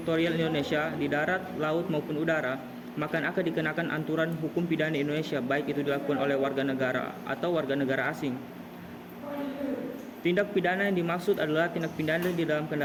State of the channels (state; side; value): identical; both; correlation 1.00